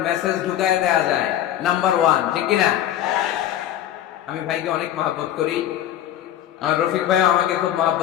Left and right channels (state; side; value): quieter; right; 11.5 dB